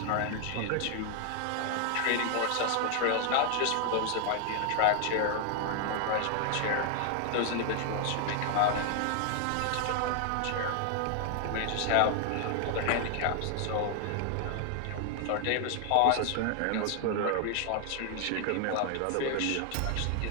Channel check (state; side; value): different; both; correlation 0.00